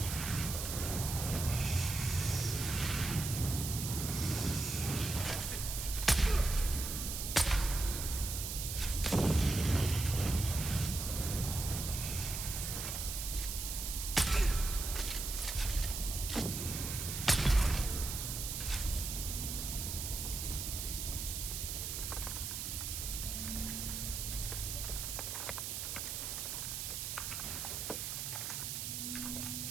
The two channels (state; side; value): noise; right; hiss, 4 dB below the sound